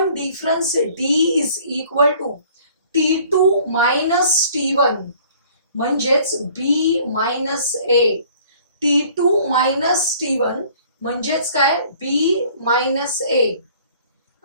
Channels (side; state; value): both; inverted; correlation -0.54